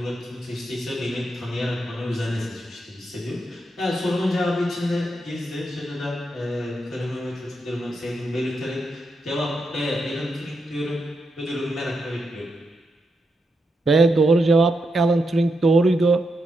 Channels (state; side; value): normal; both; correlation 0.84